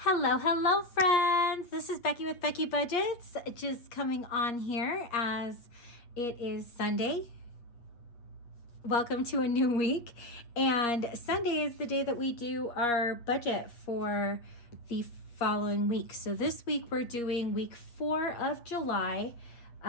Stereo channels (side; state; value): right; late; 8.5 ms